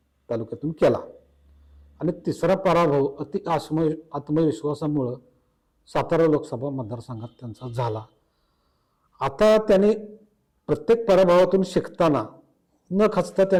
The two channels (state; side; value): identical; both; correlation 1.00